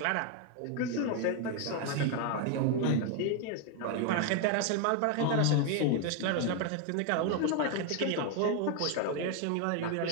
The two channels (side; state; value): both; different; correlation 0.01